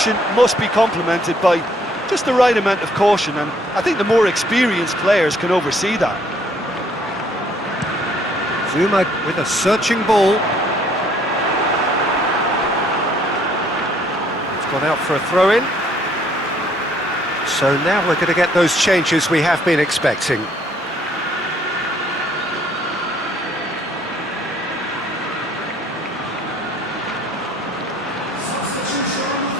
must be complemented by just the right amount of caution, and I think the more experienced players can oversee that. Zuma with a searching ball. It's Gone out for a throw-in. So now we're going to get those changes we have been expecting.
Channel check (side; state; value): both; normal; correlation 0.63